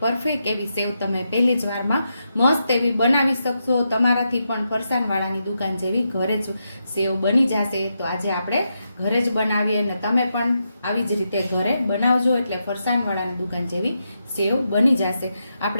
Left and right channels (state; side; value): inverted; both; correlation -0.84